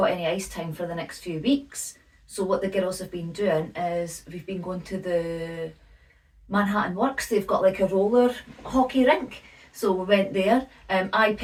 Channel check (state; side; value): identical; both; correlation 1.00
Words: any ice time for the next few weeks. So what the girls have been doing is we've been going to the Manhattan Works. They've got like a roller hockey rink. So we went there. I